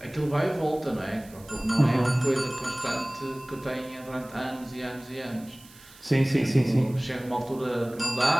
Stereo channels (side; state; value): right; noise; hiss, 23 dB below the sound